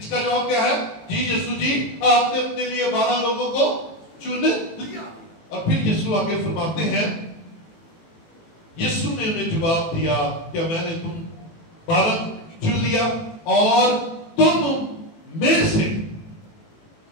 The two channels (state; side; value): late; right; 18 ms